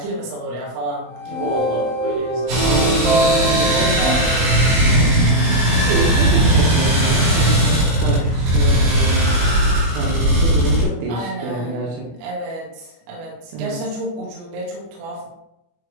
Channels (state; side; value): late; left; 24 ms